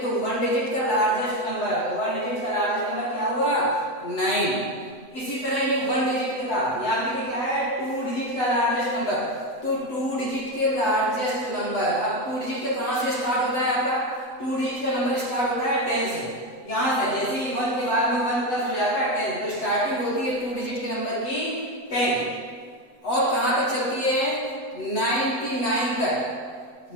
1 डिजिट का लार्जेस्ट नंबर, 1 डिजिट का लार्जेस्ट नंबर क्या हुआ, 9। इसी तरह ये 1 डिजिट का, यहाँ पे क्या है, 2 डिजिट का लार्जेस्ट नंबर, तो 2 डिजिट के लार्जेस्ट नंबर। अब 2 डिजिट का कहां से स्टार्ट होता है आपका, 2 डिजिट का नंबर स्टार्ट होता है 10 से। यहां से जैसे ही 1 के बाद में 1 प्लस हो जाता है 10, तो स्टार्टिंग होती है 2 डिजिट के नंबर की 10, और कहां तक चलती है, 99 तक।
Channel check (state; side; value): late; right; 7.9 ms